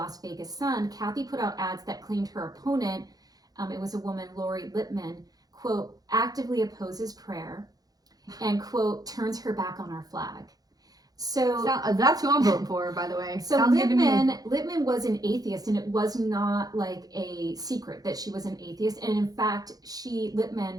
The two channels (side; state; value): left; late; 0.18 ms